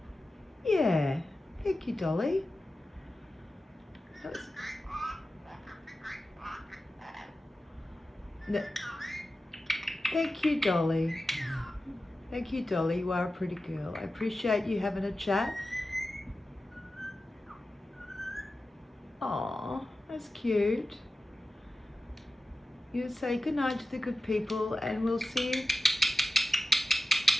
Yeah. Thank you, Dolly. No. Thank you, Dolly. Thank you, Dolly. You are a pretty girl. I appreciate you having a chat. Aw, that's cute. You say good night to the good people and we'll see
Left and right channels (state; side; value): normal; both; correlation 0.94